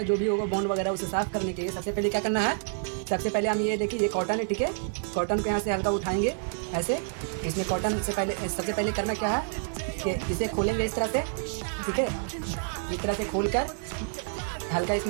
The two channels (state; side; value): silent; left; digital silence